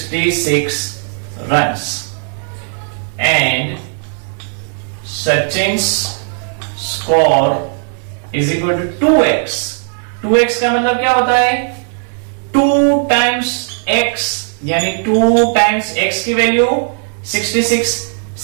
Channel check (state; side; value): silent; left; digital silence